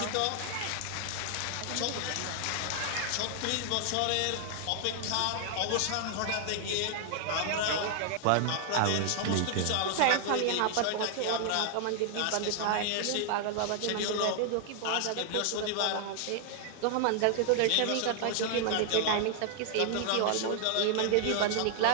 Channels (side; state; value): both; different; correlation 0.00